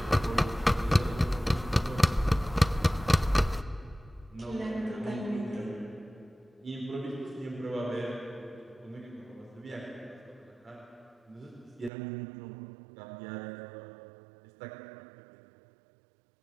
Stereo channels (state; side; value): drops out; left; at 11.9 s